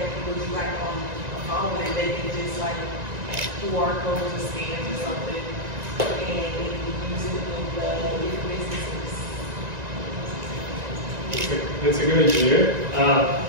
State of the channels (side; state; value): left; late; 1.9 ms